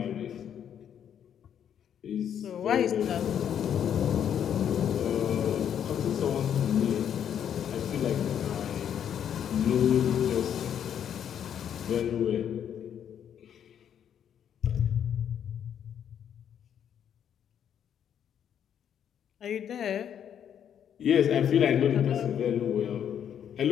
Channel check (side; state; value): right; quieter; 9.1 dB